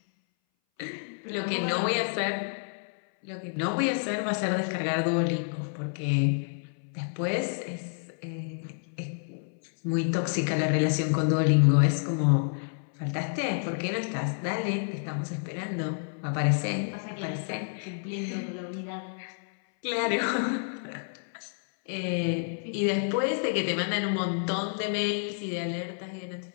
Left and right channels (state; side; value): silent; right; 58 dB below the other